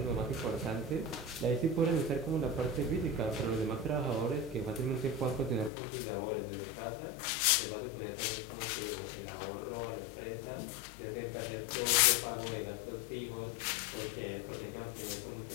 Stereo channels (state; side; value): drops out; right; at 5.7 s